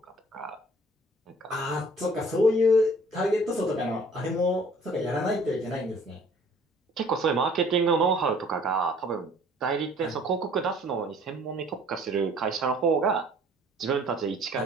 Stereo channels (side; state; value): both; normal; correlation 0.54